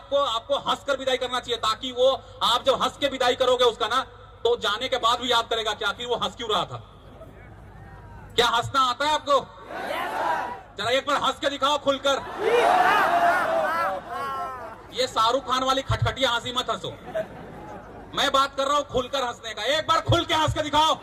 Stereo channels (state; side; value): identical; both; correlation 1.00